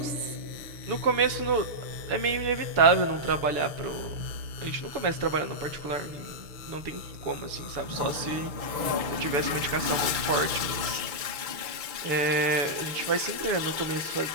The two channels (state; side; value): late; left; 6.7 ms